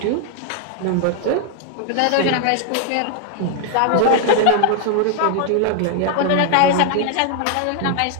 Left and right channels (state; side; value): different; both; correlation 0.00